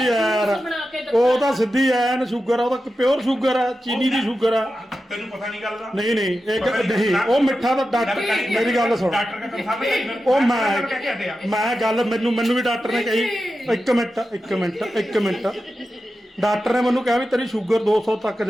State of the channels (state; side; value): normal; both; correlation 0.91